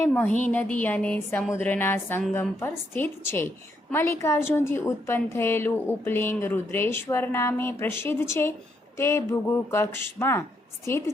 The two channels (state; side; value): normal; both; correlation 0.76